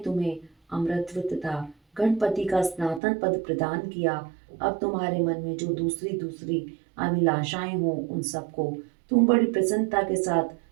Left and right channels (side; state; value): left; drops out; at 3.0 s